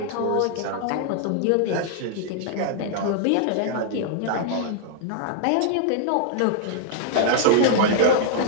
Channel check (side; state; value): both; different; correlation -0.01